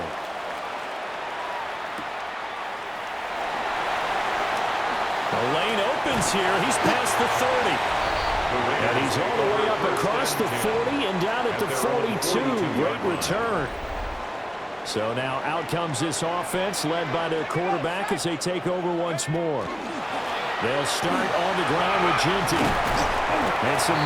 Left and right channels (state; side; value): identical; both; correlation 1.00